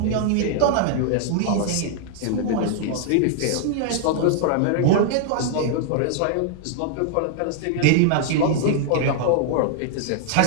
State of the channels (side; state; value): both; different; correlation -0.01